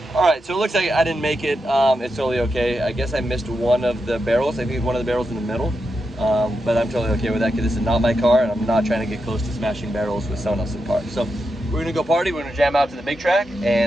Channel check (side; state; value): both; normal; correlation 0.87